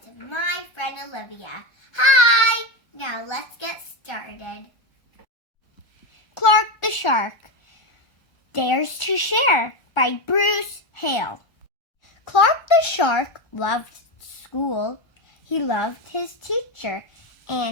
to my friend Olivia. Hi! Now let's get started. Clark the Shark, Dares to Share by Bruce Hale. Clark the Shark loved school. He loved his teacher,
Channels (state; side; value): late; right; 1.4 ms